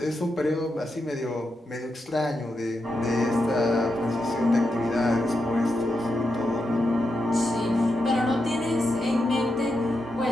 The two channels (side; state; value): both; normal; correlation 0.86